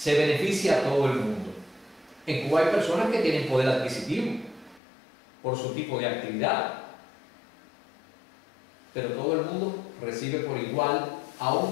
beneficia a todo el mundo. En Cuba hay personas que tienen poder adquisitivo por su tipo de actividad, pero todo el mundo recibe por igual,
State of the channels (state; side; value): drops out; right; at 4.8 s